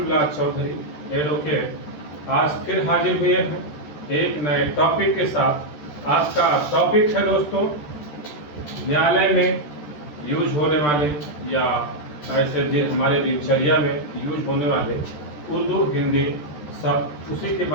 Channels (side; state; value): right; late; 13 ms